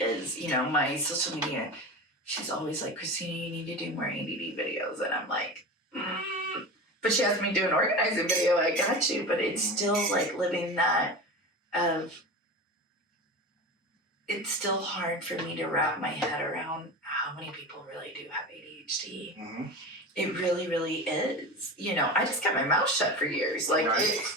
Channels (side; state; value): both; normal; correlation 0.28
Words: is. You know, my social media. She's always like, Christina, you need to do more ADD videos, and I'm like, But she has me do an organizing video. I got you, but it's still like living that of. It's still hard for me to wrap my head around how many people really do have ADHD. Mm-hmm. It really, really is. You know, I just kept my mouth shut for years. Like,